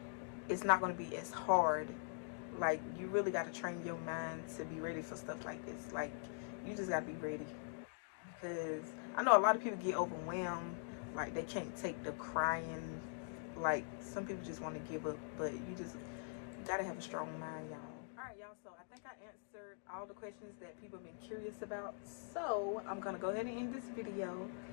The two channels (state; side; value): silent; right; digital silence